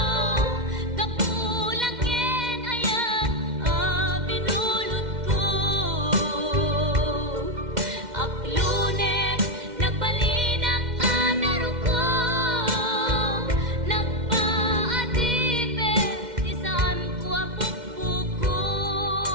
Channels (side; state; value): left; late; 2.1 ms